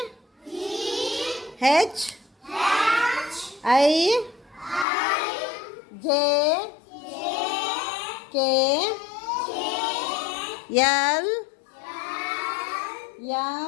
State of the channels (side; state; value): right; drops out; at 4.9 s